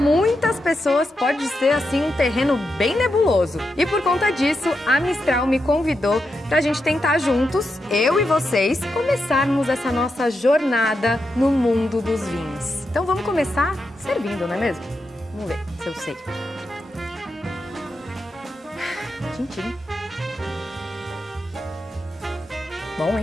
pessoas pode ser assim um terreno bem nebuloso. E por conta disso, a Mistral me convidou pra gente tentar juntos, eu e vocês, começarmos essa nossa jornada no mundo dos vinhos. Então vamos começar servindo, não é mesmo? Vamos ver se eu sei. Tchim-tchim. Bom,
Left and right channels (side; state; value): both; normal; correlation 0.86